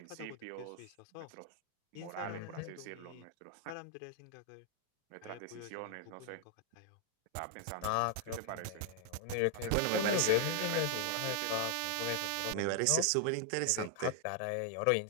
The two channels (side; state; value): both; different; correlation 0.00